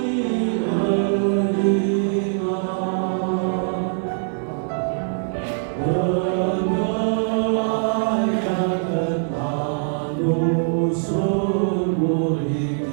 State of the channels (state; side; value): silent; left; 59 dB below the other